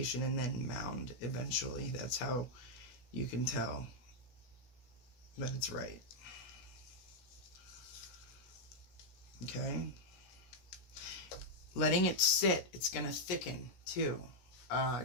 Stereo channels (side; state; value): right; late; 16 ms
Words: and then mound eventually. That's how you can tell that it's right. Okay? Letting it sit, it's going to thicken too.